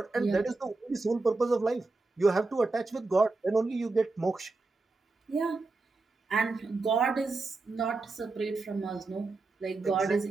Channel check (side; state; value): left; quieter; 3.6 dB